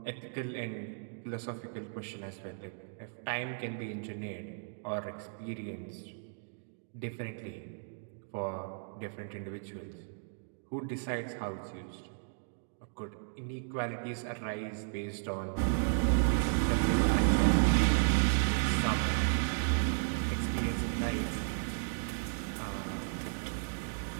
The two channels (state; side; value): silent; left; digital silence